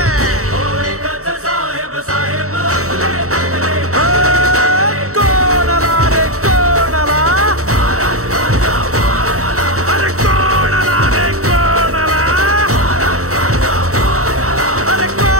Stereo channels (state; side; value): late; left; 0.64 ms